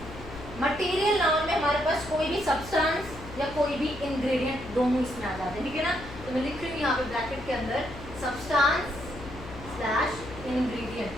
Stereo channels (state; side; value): noise; left; hum, 14 dB below the sound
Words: Material noun में हमारे पास कोई भी सब्सटेंस या कोई भी इंग्रेडिएंट दोनों इसमें आ जाते हैं। ठीक है ना, तो मैं लिख रही हूँ यहाँ पे ब्रैकेट के अंदर सब्सटेंस स्लैश इंग्रेडिएंट।